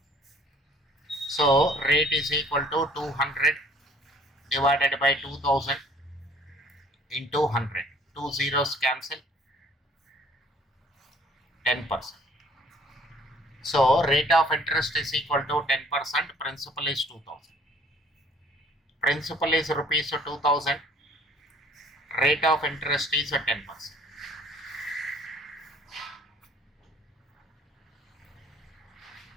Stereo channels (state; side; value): normal; both; correlation 0.56